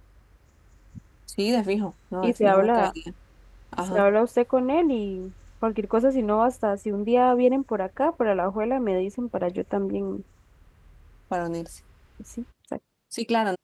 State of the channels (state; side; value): identical; both; correlation 1.00